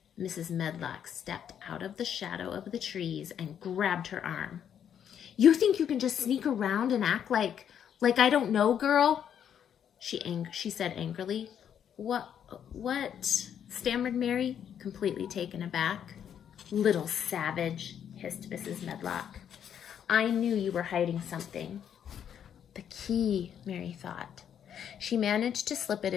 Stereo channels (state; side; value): quieter; right; 8.9 dB